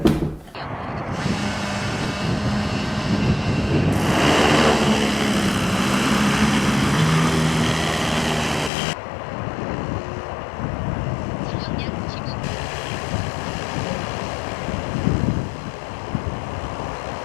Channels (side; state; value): right; drops out; at 8.7 s